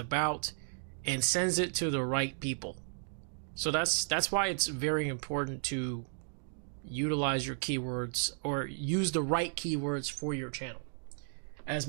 and sends it to the right people. So that's why it's very important to utilize your keywords, or use the right keywords for your channel as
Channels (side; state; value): left; silent; digital silence